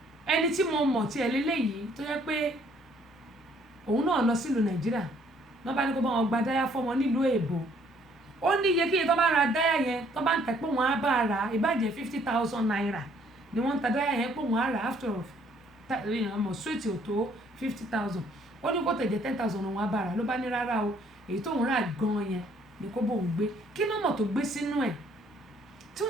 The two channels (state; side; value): normal; both; correlation 0.63